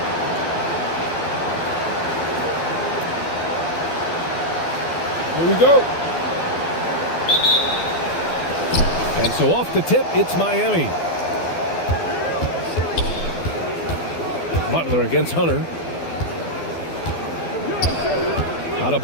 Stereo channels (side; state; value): right; late; 12 ms